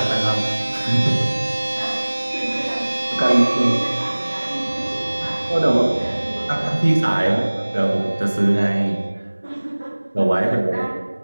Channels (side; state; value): both; inverted; correlation -1.00